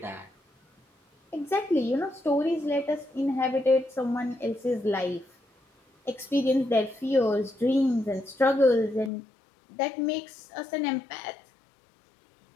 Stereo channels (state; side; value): drops out; right; at 9.1 s